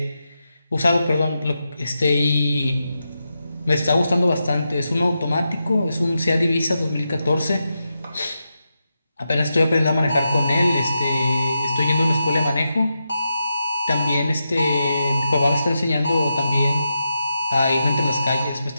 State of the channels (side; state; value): both; inverted; correlation -0.88